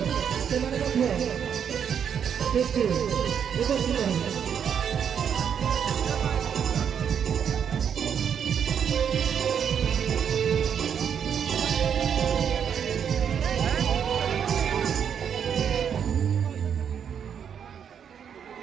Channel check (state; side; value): quieter; left; 7.9 dB